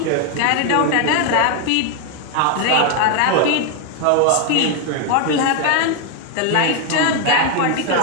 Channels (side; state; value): both; different; correlation 0.00